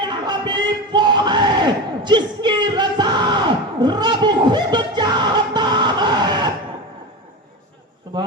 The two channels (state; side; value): normal; both; correlation 0.24